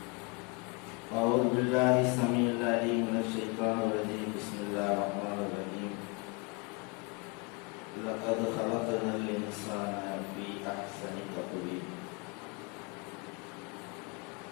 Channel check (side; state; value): right; quieter; 30.6 dB